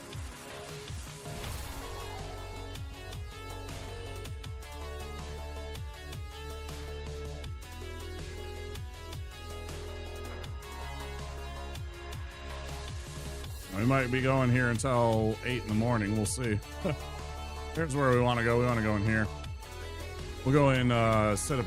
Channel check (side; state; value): both; identical; correlation 1.00